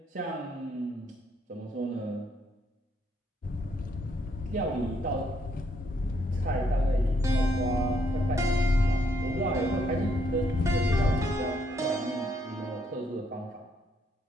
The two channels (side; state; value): both; normal; correlation 0.72